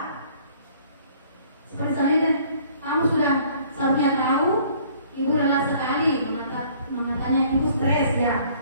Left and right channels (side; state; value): both; inverted; correlation -0.57